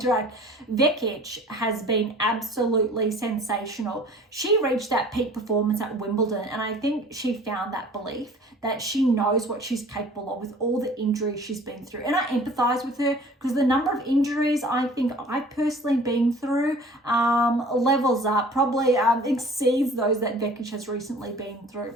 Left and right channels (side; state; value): both; normal; correlation 0.48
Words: Vekic has been absolutely sensational. She reached that peak performance at Wimbledon, and I think she found that belief that she knows what she's capable of with all the injuries she's been through. And I empathize with her because the number of injuries I think I've personally been through levels up, probably exceeds those that Vekic has recently been through.